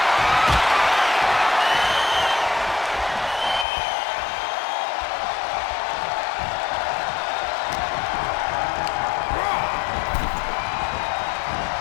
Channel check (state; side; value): drops out; right; at 3.7 s